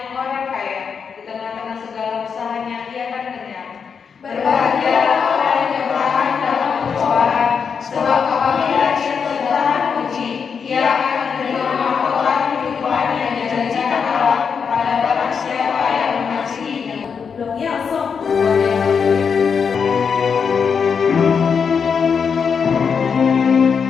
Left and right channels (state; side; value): quieter; right; 6.3 dB